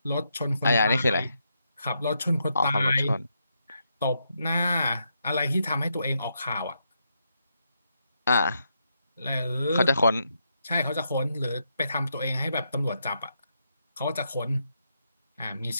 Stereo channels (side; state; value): both; inverted; correlation -0.81